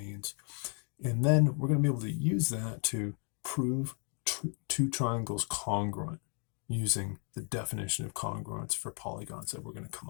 And then we're going to be able to use that to prove two triangles congruent using the definition of congruence for polygons that we're going to come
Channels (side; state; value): right; quieter; 39.4 dB